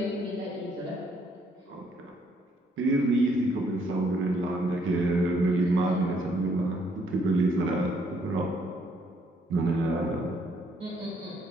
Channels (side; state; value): both; normal; correlation 0.68